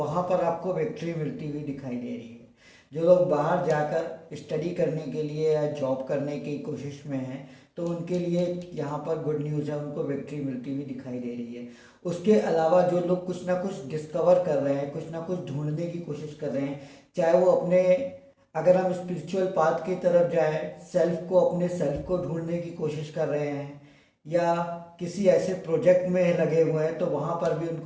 पर आपको विक्ट्री मिलती हुई दिखाई दे रही है। जो लोग बाहर जाकर स्टडी करने के लिए या जॉब करने की कोशिश में हैं तो उनके लिए यहाँ पर गुड न्यूज़ है, उनको विक्ट्री मिलती हुई दिखाई दे रही है। उसके अलावा जो लोग कुछ ना कुछ डिस्कवर कर रहे हैं, कुछ ना कुछ ढूंढने की कोशिश कर रहे हैं, चाहे वो अपने, अगर हम स्पिरिचुअल पाथ की तरफ जाएं, सेल्फ को, अपने सेल्फ को ढूंढने की कोशिश कर रहे हैं, या किसी ऐसे प्रोजेक्ट में लगे हुए हैं, तो वहाँ पर भी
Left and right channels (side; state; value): both; identical; correlation 1.00